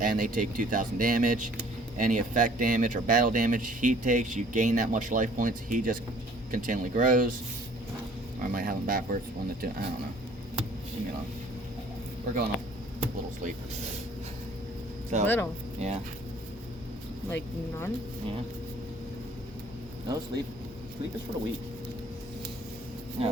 they take 2,000 damage. Any effect damage or battle damage he takes, you gain that much life points. He just continually grows. Or I might have him backwards. 1 to 2. I don't know. Leave me alone. We're going off a little sleep. So, Little. Yeah. Like none? Yeah. No sleep. Sleep is for the weak.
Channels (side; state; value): both; normal; correlation 0.55